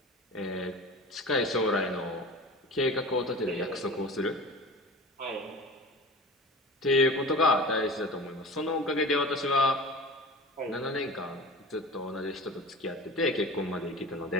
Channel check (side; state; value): both; normal; correlation 0.35